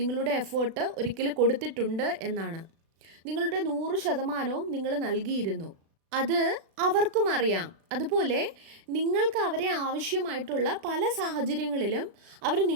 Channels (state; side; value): late; left; 36 ms